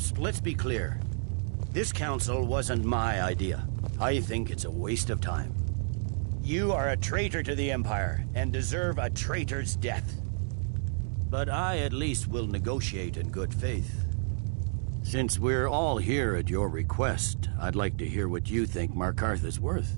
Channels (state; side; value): silent; left; digital silence